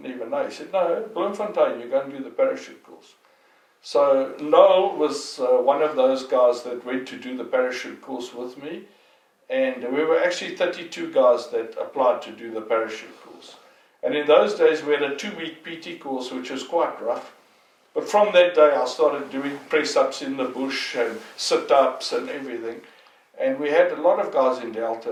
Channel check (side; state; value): both; identical; correlation 1.00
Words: even know. He said, no, Bloemfontein, you're going to do the parachute course. So Noel was one of those guys that went to do the parachute course with me, and we were actually 32 guys that applied to do the parachute course. And in those days we had a 2-week PT course, which was quite rough. But from that day I started doing press-ups in the bush and sit-ups and everything. And we had a lot of guys in Delta